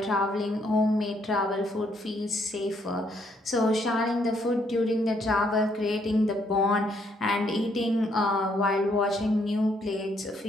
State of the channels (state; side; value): normal; both; correlation 0.71